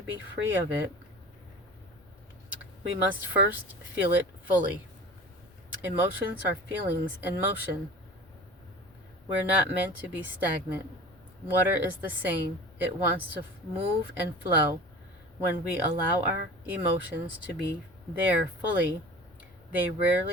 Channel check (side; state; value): both; normal; correlation 0.38